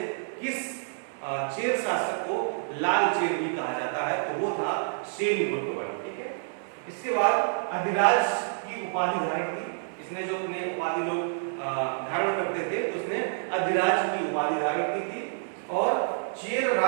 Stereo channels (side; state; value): left; silent; digital silence